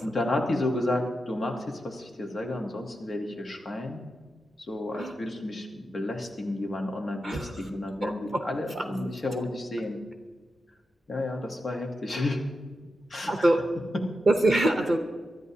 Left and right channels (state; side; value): normal; both; correlation 0.89